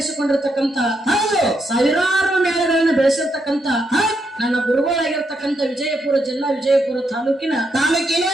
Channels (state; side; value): normal; both; correlation 0.80